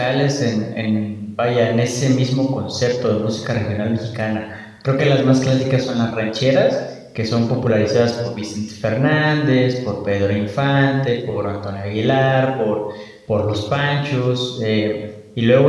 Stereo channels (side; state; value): both; identical; correlation 1.00